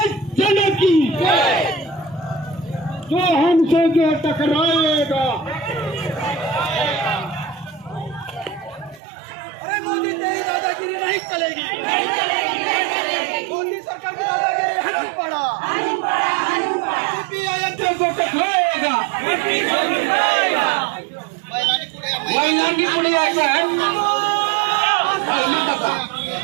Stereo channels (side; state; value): left; drops out; at 9.0 s